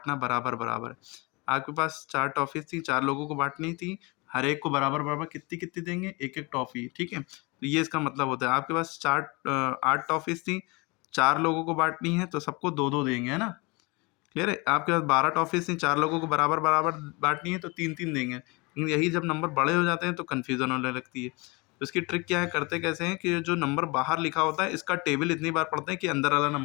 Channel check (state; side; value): quieter; right; 27.0 dB